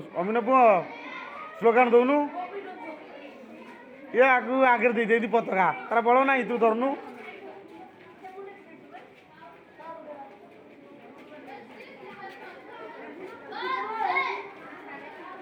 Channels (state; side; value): identical; both; correlation 1.00